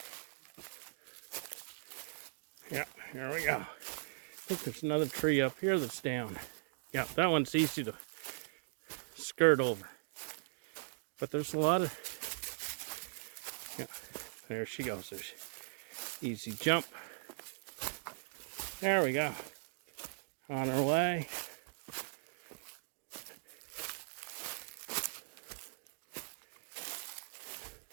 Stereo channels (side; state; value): left; silent; digital silence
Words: There we go. I think there's another tree up here that's down. Yeah, that one's easy to skirt over. But there's a lot of... Yeah, there she goes. There's easy jump. There we go. On our way.